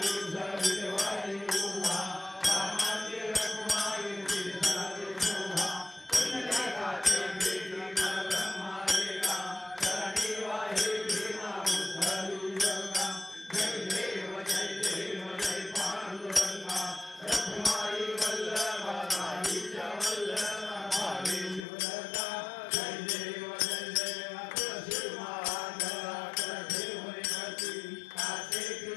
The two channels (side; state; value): right; drops out; at 21.7 s